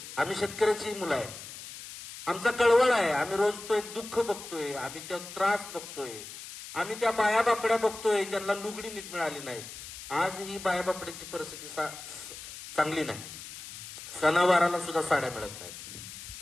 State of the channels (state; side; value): noise; left; hiss, 12 dB below the sound